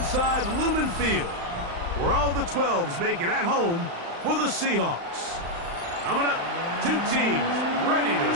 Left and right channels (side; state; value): left; late; 35 ms